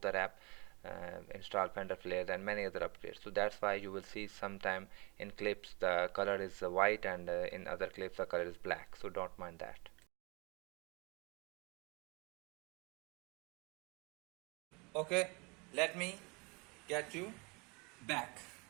the wrap, install fender flares and many other upgrades. So that's why you will see sometime in clips the color is white, and in other clips the color is black, so don't mind that. Okay, let me get you back.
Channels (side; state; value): left; quieter; 28.6 dB